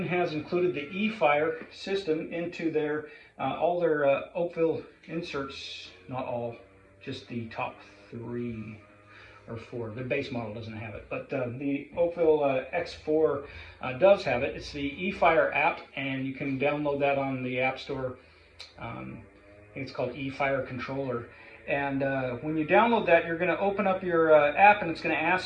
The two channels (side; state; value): both; identical; correlation 1.00